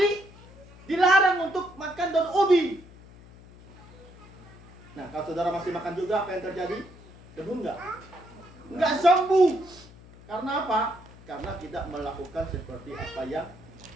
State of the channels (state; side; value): noise; left; hum, 21 dB below the sound